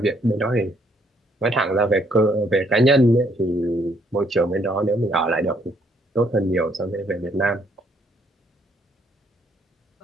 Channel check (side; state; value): both; normal; correlation 0.68